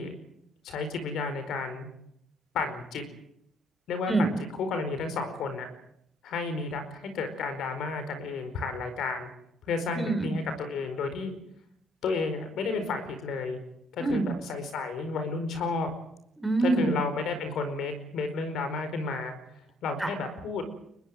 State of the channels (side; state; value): both; normal; correlation 0.65